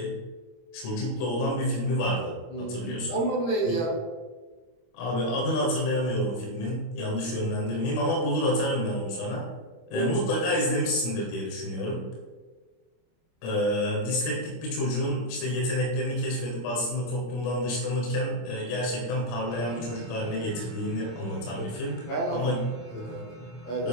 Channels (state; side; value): late; right; 25 ms